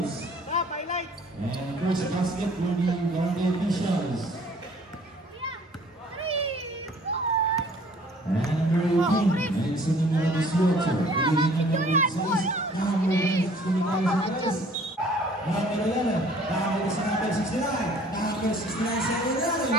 And first basket for the Barangay Officials. And number 18, ayun sa numero 18. Piligin numero 6. Number 6, number 11, nakakita sa number 69. Number 69 sa ilalim.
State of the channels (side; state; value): both; normal; correlation 0.54